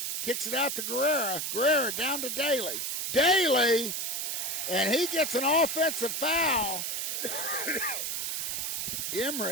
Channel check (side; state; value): right; noise; hiss, 2 dB below the sound